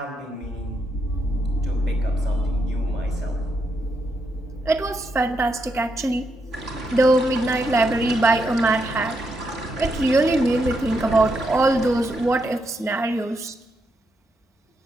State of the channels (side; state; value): both; normal; correlation 0.80